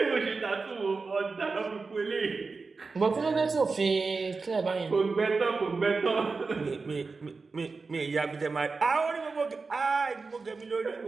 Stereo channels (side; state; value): left; quieter; 4.3 dB